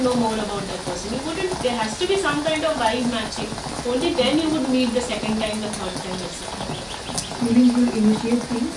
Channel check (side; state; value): both; identical; correlation 1.00